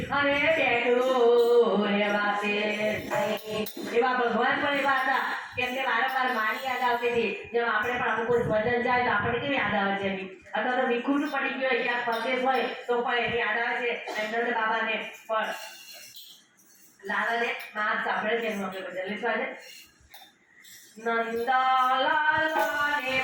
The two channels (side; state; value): both; identical; correlation 1.00